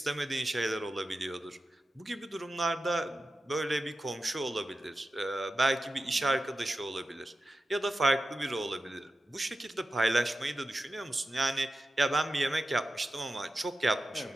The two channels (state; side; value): normal; both; correlation 0.92